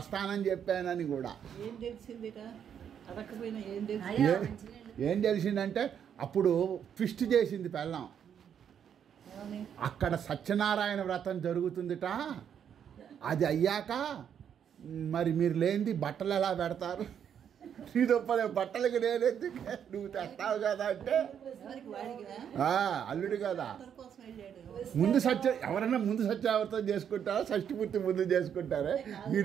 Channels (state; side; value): quieter; left; 8.5 dB